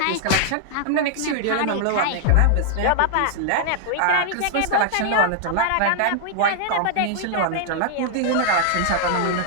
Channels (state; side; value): different; both; correlation -0.01